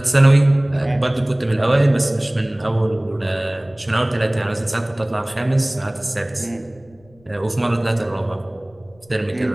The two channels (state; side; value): noise; left; rumble, 29 dB below the sound